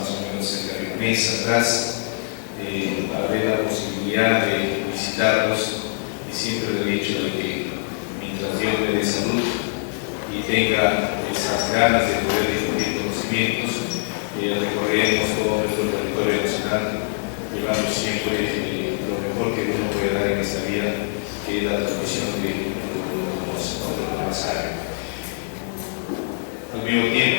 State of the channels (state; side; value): silent; right; digital silence